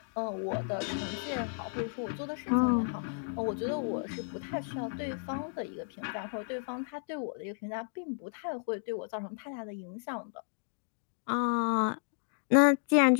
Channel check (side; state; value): right; silent; digital silence